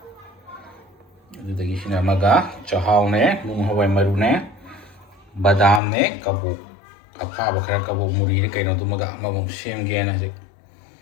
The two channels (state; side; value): drops out; right; at 5.8 s